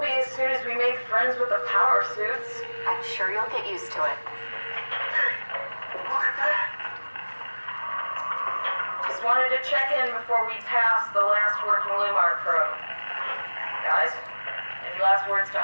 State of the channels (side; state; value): both; inverted; correlation -1.00